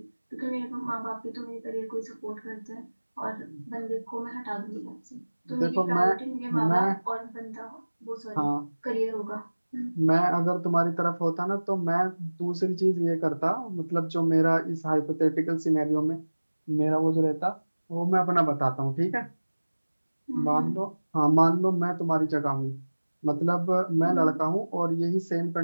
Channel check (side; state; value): both; inverted; correlation -1.00